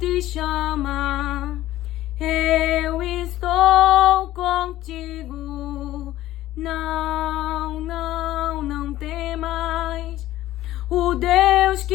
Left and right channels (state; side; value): quieter; right; 14.9 dB